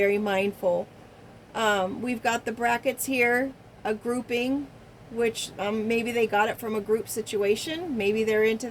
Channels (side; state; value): both; identical; correlation 1.00